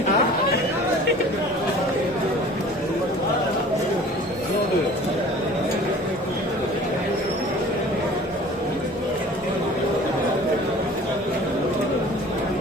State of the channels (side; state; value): both; normal; correlation 0.46